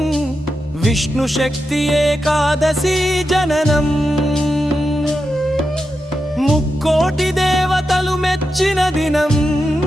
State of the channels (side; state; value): both; normal; correlation 0.88